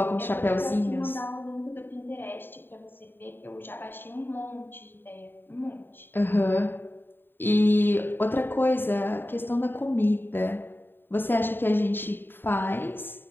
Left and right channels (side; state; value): right; late; 0.098 ms